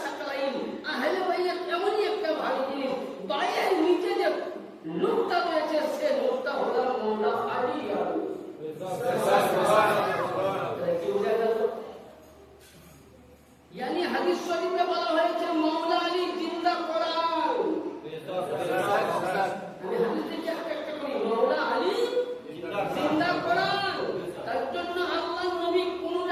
সাকলাইন, আহলে বাইত এমনই একটা ভারী জিনিস, পায়ের নিচে যে নুকতা রয়েছে সে নুকতা হলো মাওলা আলী। यानी हदीस शरीफ में বলা হয়েছে মাওলা আলী জিন্দা কোরআন। আমি হাদিসে কি একটা করি, মাওলা আলী জিন্দা কোরআন। তার জন্য আল্লাহ নবী কোন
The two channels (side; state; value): both; identical; correlation 1.00